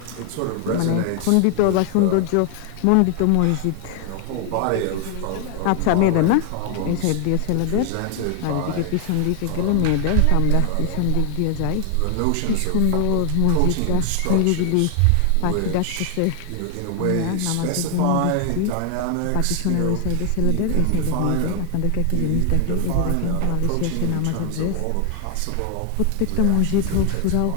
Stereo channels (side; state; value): both; different; correlation 0.00